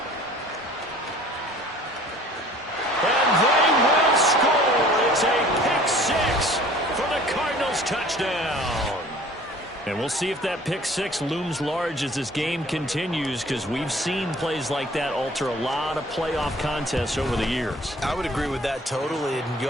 And they will score. It's a pick six for the Cardinals touchdown. And we'll see if that pick six looms large as this game continues, because we've seen plays like that alter a lot of playoff contests over the years. I would agree with that totally, and you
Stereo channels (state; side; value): normal; both; correlation 0.50